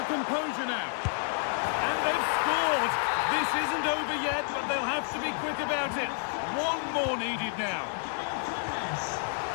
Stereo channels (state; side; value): silent; right; 58 dB below the other